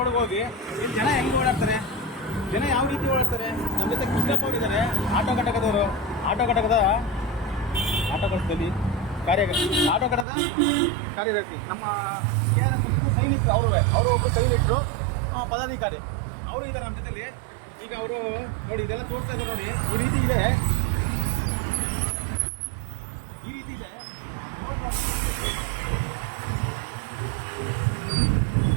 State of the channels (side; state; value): left; drops out; at 10.2 s